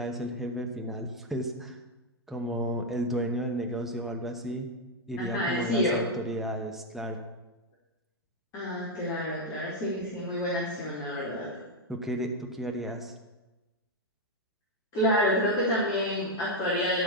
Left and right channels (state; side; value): normal; both; correlation 0.01